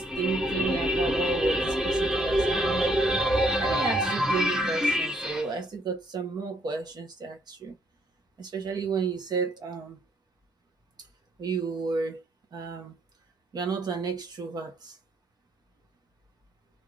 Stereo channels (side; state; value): both; normal; correlation 0.69